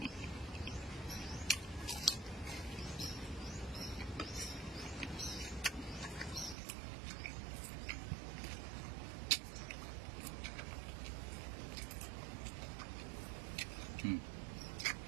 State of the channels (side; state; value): left; drops out; at 6.6 s